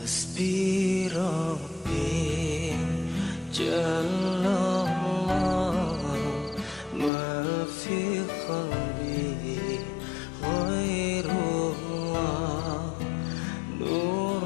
حسبي ربي جل الله ما في قلبي غير الله نور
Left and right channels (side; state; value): right; drops out; at 7.1 s